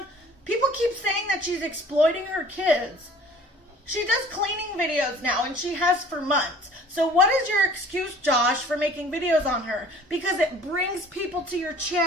People keep saying that she's exploiting her kids. She does cleaning videos now, and she has for months. So what is your excuse, Josh, for making videos on her? Because it brings people to your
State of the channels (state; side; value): normal; both; correlation 0.49